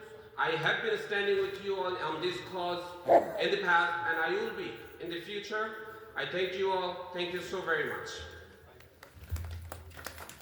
I have been standing with you on this cause in the past, and I will be in the future. I thank you all. Thank you so very much.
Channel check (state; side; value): identical; both; correlation 1.00